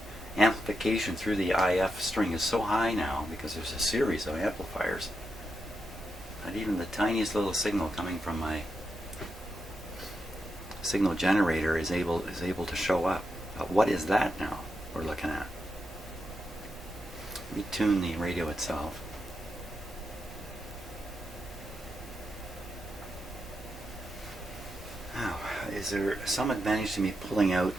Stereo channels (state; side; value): normal; both; correlation 0.85